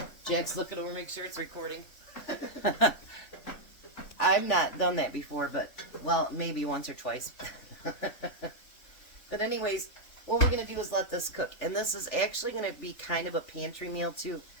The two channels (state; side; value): late; right; 3.4 ms